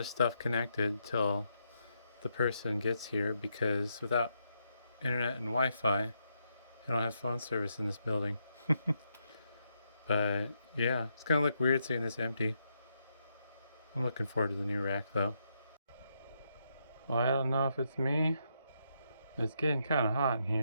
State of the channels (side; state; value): both; inverted; correlation -0.79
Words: stuff connected till the person gets here because without internet and Wi-Fi, I don't have phone service in this building. But yeah, it's gonna look weird seeing this empty. I'm looking forward to the new rack though. Well, I don't know if it's me. It's getting kind of hot in